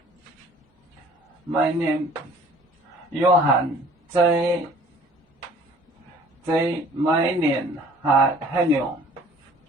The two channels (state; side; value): normal; both; correlation 0.51